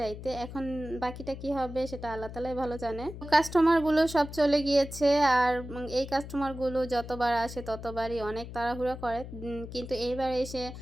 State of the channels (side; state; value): left; noise; hum, 11 dB below the sound